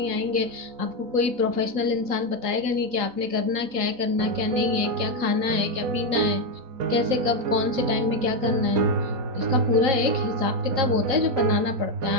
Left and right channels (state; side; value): late; left; 3.7 ms